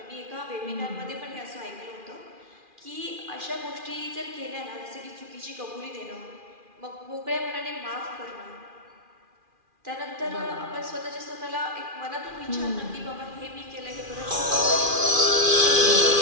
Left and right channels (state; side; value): late; left; 2.4 ms